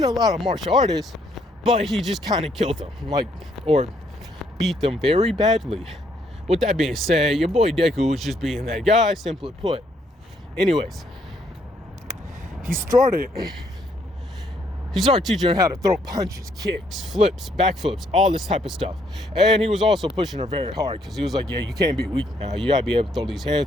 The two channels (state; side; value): normal; both; correlation 0.70